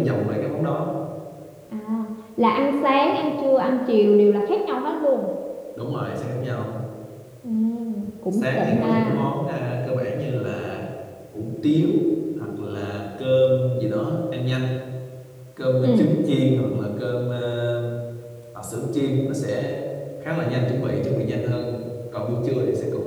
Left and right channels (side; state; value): both; identical; correlation 1.00